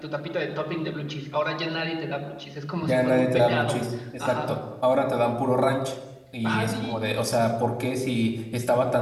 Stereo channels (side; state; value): both; identical; correlation 1.00